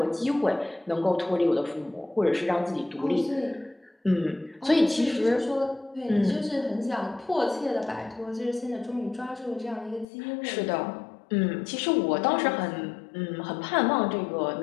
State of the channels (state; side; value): drops out; right; at 10.1 s